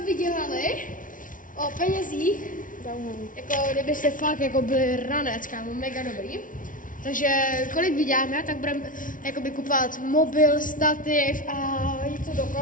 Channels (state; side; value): late; right; 0.38 ms